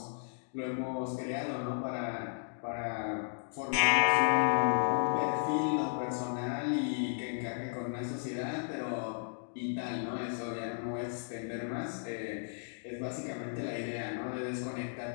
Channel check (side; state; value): right; silent; digital silence